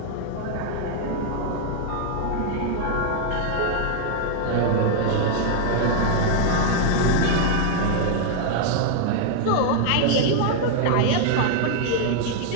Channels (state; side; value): different; both; correlation 0.00